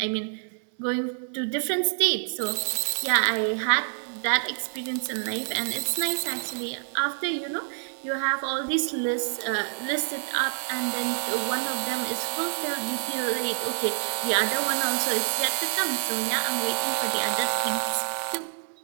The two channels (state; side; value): silent; left; 60 dB below the other